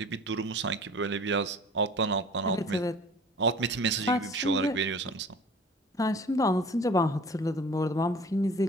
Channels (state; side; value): normal; both; correlation 0.45